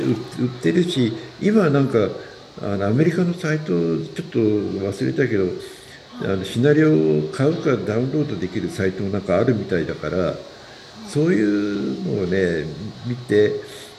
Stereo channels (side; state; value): both; identical; correlation 1.00